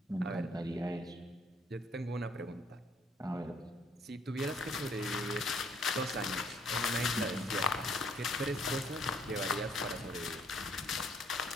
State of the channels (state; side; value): normal; both; correlation 0.64